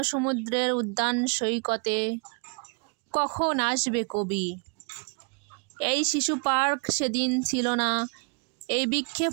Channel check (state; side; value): quieter; left; 38.9 dB